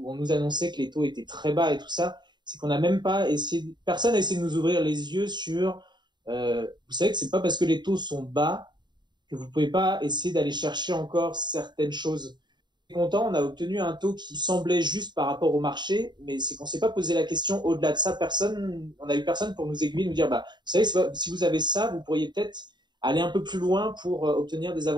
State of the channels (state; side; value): late; left; 0.21 ms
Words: on nous annonçait que les taux étaient très bas et tout ça, c'est qu'on n'a même pas personne n'a essayé de nous ouvrir les yeux sur, vous savez que c'est pas parce que les taux sont bas que vous pouvez pas essayer d'aller chercher encore certaines choses. Content, on a obtenu un taux qui semblait juste par rapport au marché, mais c'est qu'on s'est pas posé la question au-delà de ça. On a eu personne pour nous aiguiller, nous dire, vous savez, si vous avez ça, vous pourriez peut-être aller un peu plus loin pour obtenir des